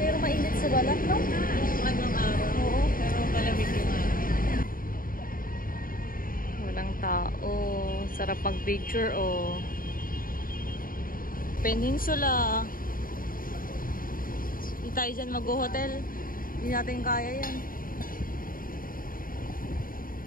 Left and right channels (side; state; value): right; late; 0.41 ms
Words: mainit sa balat, no? Anong araw? Oo. Pero malamig yung araw. Walang tao. Sarap mag-picture, oh. Peninsula. Hindi tayo dyan mag-hotel. Hindi natin kaya yan.